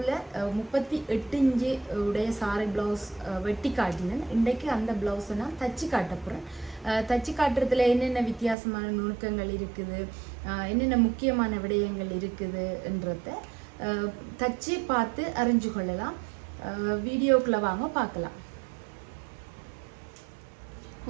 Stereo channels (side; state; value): left; drops out; at 8.6 s